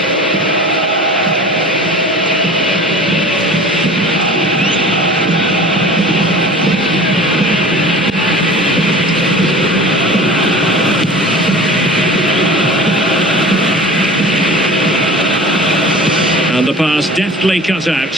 deftly cut out.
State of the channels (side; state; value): both; normal; correlation 0.40